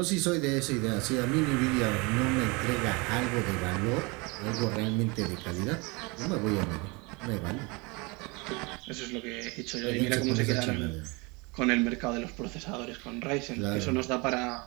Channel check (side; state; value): left; quieter; 27.7 dB